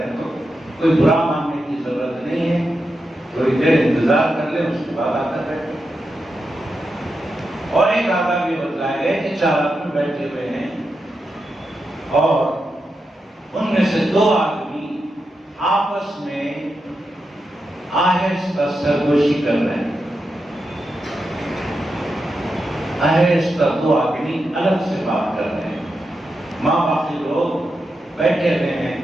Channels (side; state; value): both; normal; correlation 0.87